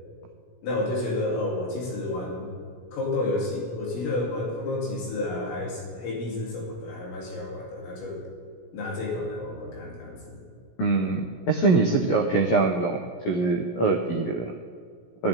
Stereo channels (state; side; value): late; right; 17 ms